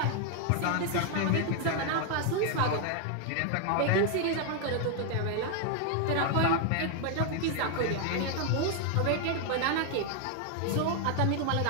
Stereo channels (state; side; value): different; both; correlation 0.00